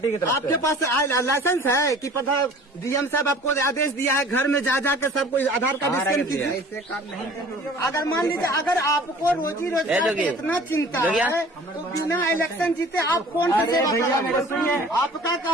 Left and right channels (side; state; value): both; normal; correlation 0.47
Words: की तरफ आपके पास लाइसेंस है कि पता डीएम साहब आपको आदेश दिया है घर में जा जाकर सबको आधार कार्ड स्कैन कीजिए? अगर मान लीजिए अगर आपको रोजी रोजगार की इतना चिंता है तो बिना इलेक्शन जीते आप कौन सी सेवा करेंगे? आपका